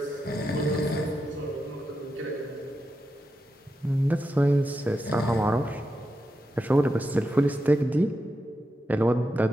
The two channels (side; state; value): both; normal; correlation 0.88